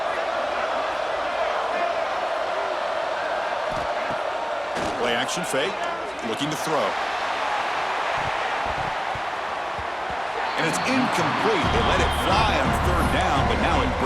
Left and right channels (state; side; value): identical; both; correlation 1.00